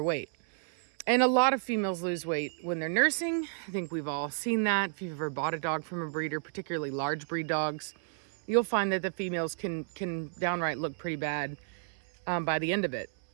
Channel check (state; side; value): silent; left; 57 dB below the other